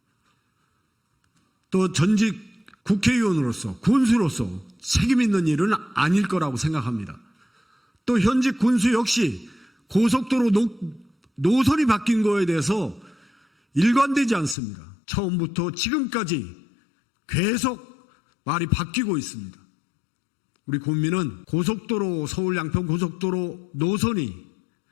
또 전직 국회의원으로서, 군수로서 책임 있는 일은 아닐 거라고 생각합니다. 또 현직 군수 역시 고속도로 노선이 바뀐 거에 대해서 일관되지 않습니다. 처음부터 지금까지 계속 말이 바뀌고 있습니다. 우리 국민은 고속도로, 서울 양평 고속도로 노선이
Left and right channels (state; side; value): drops out; right; at 14.6 s